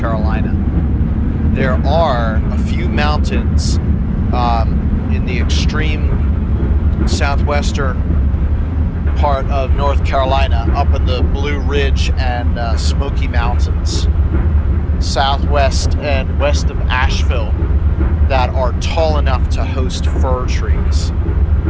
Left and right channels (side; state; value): both; identical; correlation 1.00